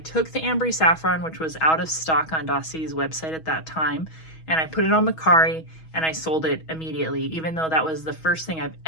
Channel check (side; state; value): right; late; 6.2 ms